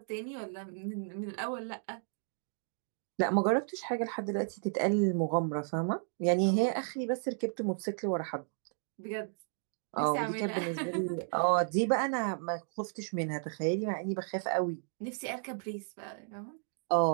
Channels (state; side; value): silent; left; digital silence